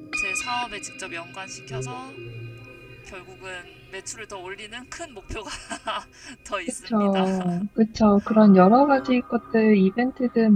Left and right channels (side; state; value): both; identical; correlation 1.00